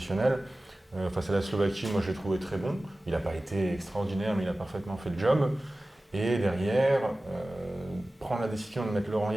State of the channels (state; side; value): normal; both; correlation 0.96